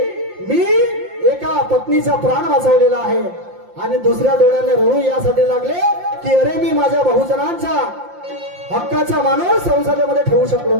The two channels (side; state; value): left; late; 5.7 ms